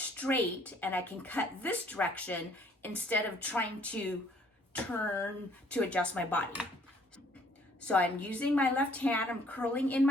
and I can cut this direction instead of trying to turn to adjust my body. So I'm using my left hand, I'm curling in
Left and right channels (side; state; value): both; normal; correlation 0.61